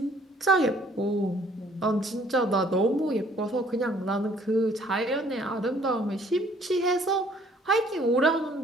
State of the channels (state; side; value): normal; both; correlation 0.59